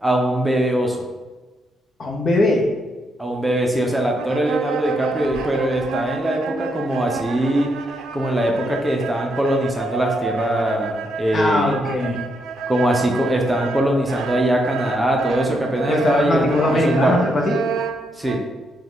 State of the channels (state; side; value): normal; both; correlation 0.78